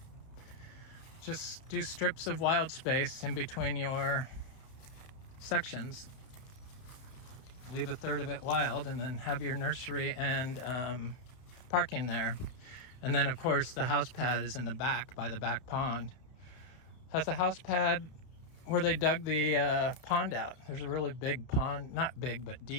Just do strips of wild space in between your sections. Leave a third of it wild, and then have your nursery and parking there. And then of course the house pad is in the back by the back pond. Has a house pad where they dug the pond out. There's a really big pond, not big but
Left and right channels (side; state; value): right; late; 31 ms